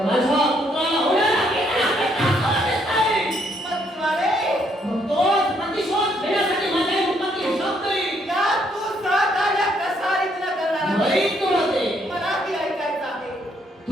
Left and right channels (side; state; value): both; normal; correlation 0.71